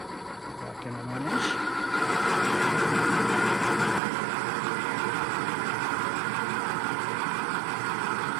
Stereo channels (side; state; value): left; drops out; at 4.0 s